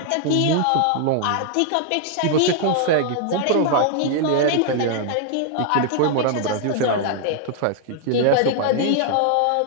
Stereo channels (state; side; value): different; both; correlation 0.00